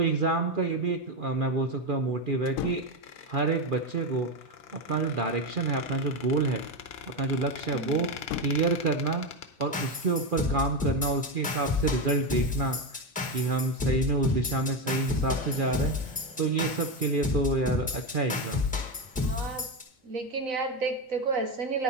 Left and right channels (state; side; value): normal; both; correlation 0.12